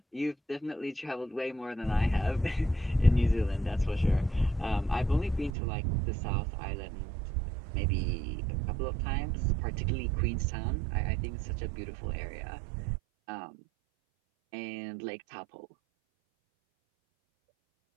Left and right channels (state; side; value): drops out; left; at 5.5 s